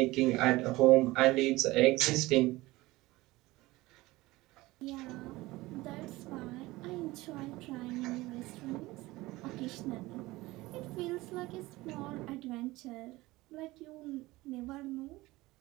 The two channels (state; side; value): quieter; left; 19.6 dB